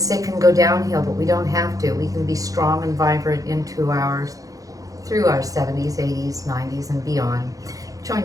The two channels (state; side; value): late; left; 0.17 ms